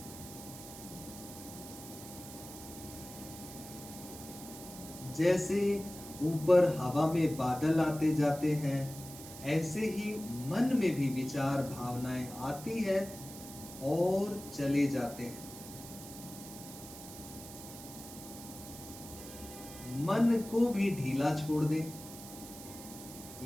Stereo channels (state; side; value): noise; right; hiss, 14 dB below the sound